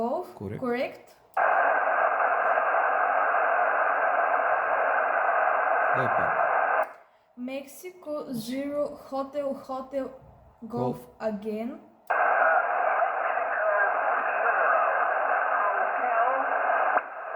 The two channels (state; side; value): identical; both; correlation 1.00